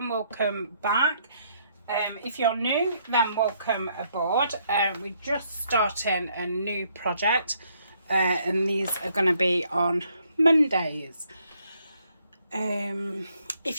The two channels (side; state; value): both; inverted; correlation -0.70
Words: welcome back. If you're new, then welcome aboard. We're just starting a new project and these are going to be on Mondays.